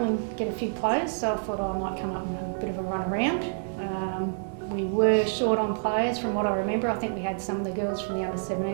to get a few players, so I thought I might come up and have a bit of a run around. We were short on players from what I remember. I think we had some of the girls from the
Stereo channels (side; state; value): left; silent; digital silence